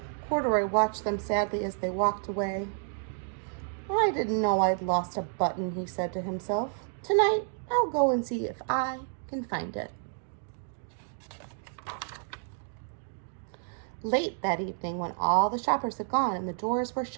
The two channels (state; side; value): silent; left; 58 dB below the other